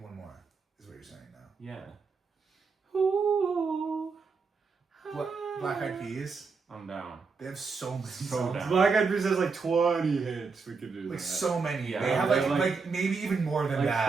one more, is what you're saying now. yeah. Black Eyed Peas. I'm down. They have so many So songs. down. Black Eyed Peas has like 20 hits. We could do that. Like so many. Yeah. They have They're like maybe even more than like that.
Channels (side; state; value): left; quieter; 4.8 dB